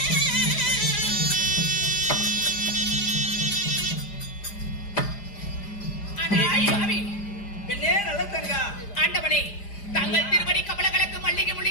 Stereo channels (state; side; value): late; right; 4.9 ms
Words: பெண்ணே நல்ல தங்கா, ஆண்டவனே, தங்கள் திருவடி கமலங்களுக்கு மல்லிகை